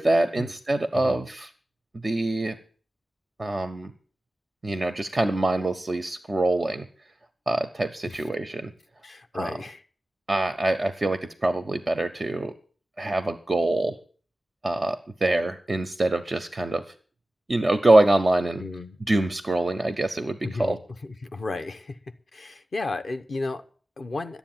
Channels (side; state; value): both; normal; correlation 0.96